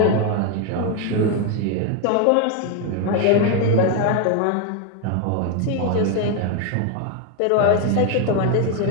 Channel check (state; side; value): different; both; correlation 0.01